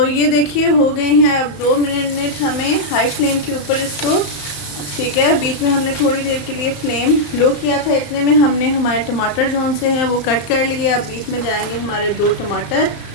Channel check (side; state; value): right; late; 35 ms